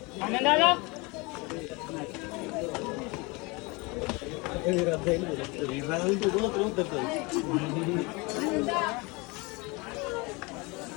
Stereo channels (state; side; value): quieter; right; 26.7 dB